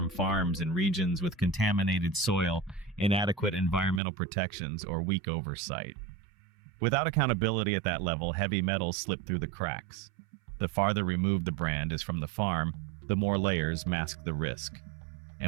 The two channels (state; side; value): drops out; left; at 4.0 s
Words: farms in regions with contaminated soil, inadequate environmental protections, or weak oversight. Without accountability at that level, heavy metals slip through the cracks. The farther removed the brand is from the farm, the more layers mask the risk.